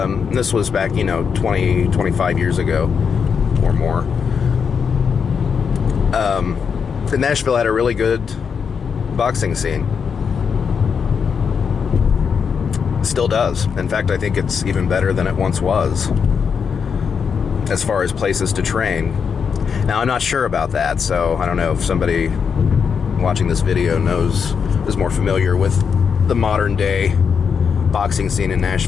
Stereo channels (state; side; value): quieter; right; 6.4 dB